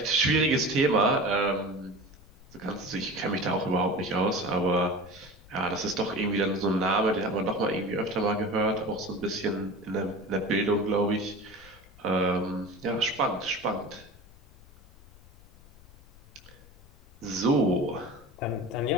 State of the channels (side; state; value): left; noise; rumble, 23 dB below the sound